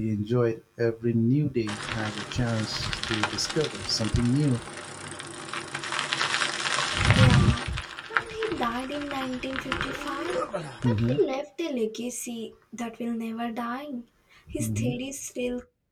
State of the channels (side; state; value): both; identical; correlation 1.00